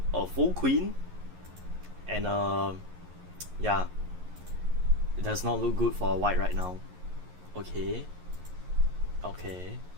a full queen, and yeah, it does not look good for white right now. Okay.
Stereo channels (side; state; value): left; late; 11 ms